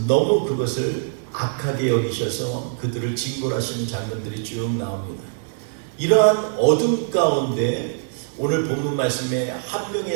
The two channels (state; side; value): silent; left; digital silence